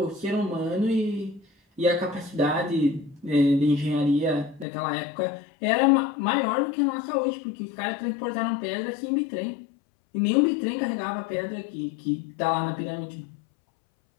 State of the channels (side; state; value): right; drops out; at 4.7 s